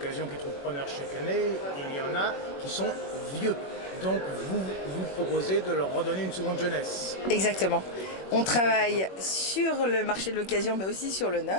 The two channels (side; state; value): right; late; 21 ms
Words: qui trouvent preneur chaque année, il y en a qui sont vieux. Donc vous proposez de leur redonner une seconde jeunesse. Exactement. On travaille sur le marché de l'occasion, mais aussi sur le